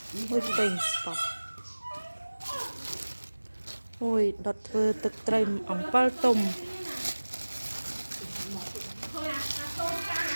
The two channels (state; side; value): inverted; both; correlation -1.00